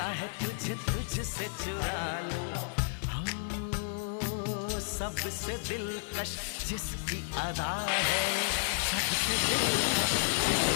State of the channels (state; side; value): silent; right; digital silence